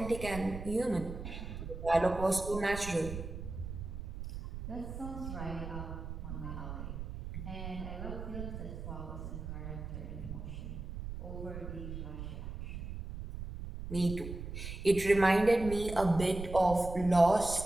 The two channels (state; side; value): noise; right; rumble, 8 dB below the sound